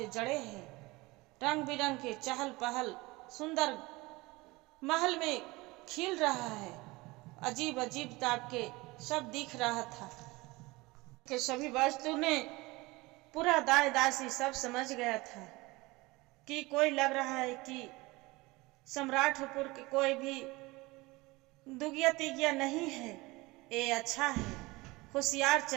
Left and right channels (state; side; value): quieter; left; 22.3 dB